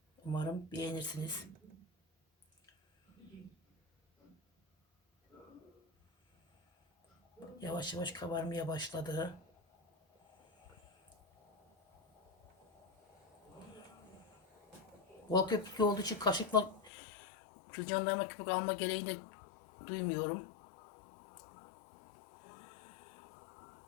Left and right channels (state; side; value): drops out; right; at 16.9 s